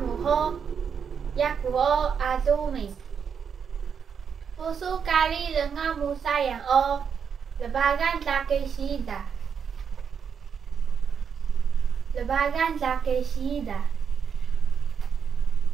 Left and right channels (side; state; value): left; quieter; 7.0 dB